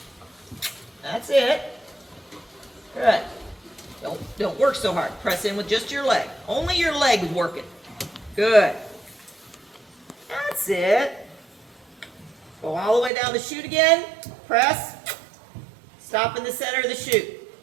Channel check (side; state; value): left; drops out; at 13.1 s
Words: That's it. Good. Don't work so hard. Press in with just your leg. Only your leg is working. Good. That's it. Go all the way down the chute again. Press. Stop in the center of the chute.